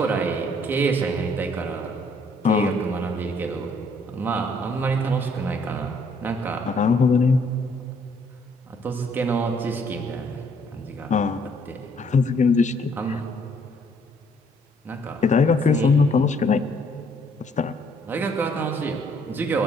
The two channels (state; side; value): normal; both; correlation 0.65